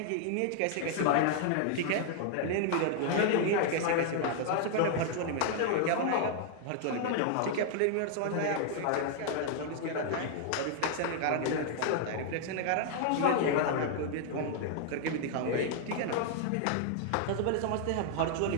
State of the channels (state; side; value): different; both; correlation -0.01